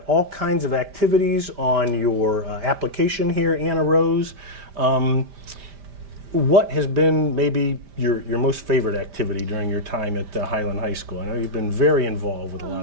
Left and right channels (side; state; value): left; late; 5.0 ms